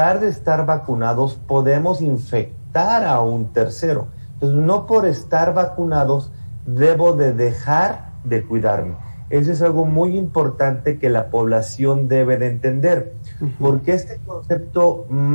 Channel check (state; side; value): inverted; both; correlation -1.00